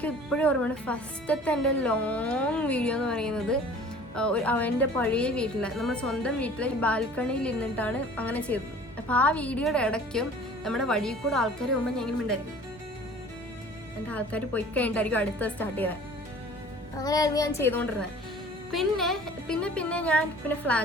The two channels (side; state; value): both; normal; correlation 0.47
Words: ഇപ്പോഴും ഓർമ്മയാണ് ഫസ്റ്റത്തെ എൻ്റെ ലോങ് വീഡിയോ എന്ന് പറയുന്നത് എൻ്റെ പഴയ വീട്ടിൽ, നമ്മുടെ സ്വന്തം വീട്ടിൽ ബാൽക്കണിയിൽ ഇരുന്നിട്ടാണ് അങ്ങനെ ചെയ്തത്. അപ്പോൾ ആ വീഡിയോയുടെ ഇടയ്ക്കും നമ്മുടെ വഴിയിൽ കൂടെ ആൾക്കാർ പോകുമ്പോൾ ഞാൻ ഇങ്ങനെ ഉണ്ടായിരിക്കും, എൻ്റെ ആൾക്കാർ പോയി കഴിഞ്ഞിട്ടായിരിക്കും അടുത്ത സ്റ്റാർട്ട് ചെയ്തത്. അങ്ങനെയായിരുന്നു ഞാൻ ചെയ്തുകൊണ്ടിരുന്നത്. പിന്നെ ഞാൻ